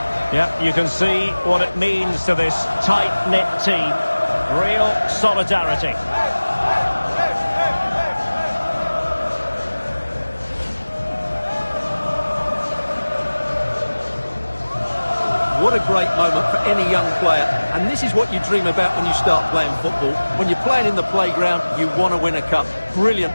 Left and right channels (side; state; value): both; inverted; correlation -1.00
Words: Yeah, you can see what it means to this tight-knit team. Real solidarity. What a great moment for any young player. And this is what you dream about when you start playing football. When you're playing in the playground, you want to win a cup. Brilliant